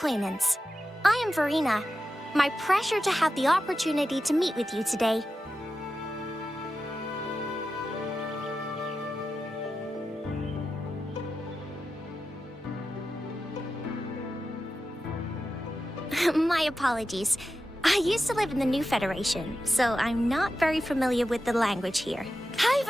I am Verena. My pleasure to have the opportunity to meet with you today. My apologies. I used to live in the New Federation, so I'm not very familiar with the language here. Hi,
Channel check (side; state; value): both; normal; correlation 0.91